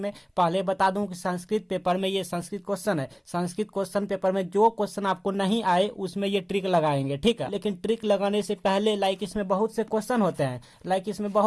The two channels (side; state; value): both; identical; correlation 1.00